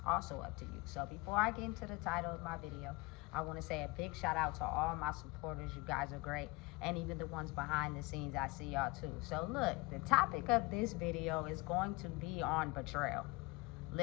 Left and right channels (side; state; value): right; quieter; 24.0 dB